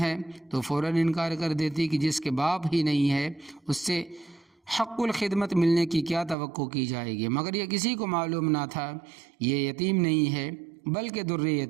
تو فوراً انکار کر دیتی کہ جس کے باپ ہی نہیں ہے اس سے حق الخدمت ملنے کی کیا توقع کی جائے گی۔ مگر یہ کسی کو معلوم نہ تھا یہ یتیم نہیں ہے بلکہ در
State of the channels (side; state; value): left; drops out; at 6.4 s